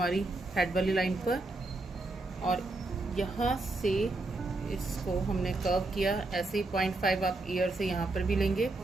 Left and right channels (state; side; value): quieter; left; 3.0 dB